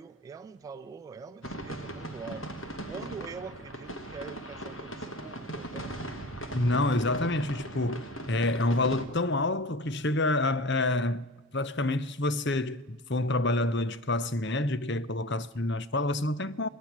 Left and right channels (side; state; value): both; normal; correlation 0.37